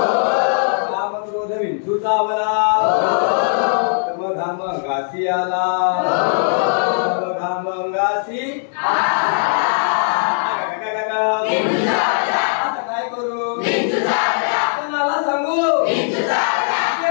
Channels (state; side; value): silent; right; 67 dB below the other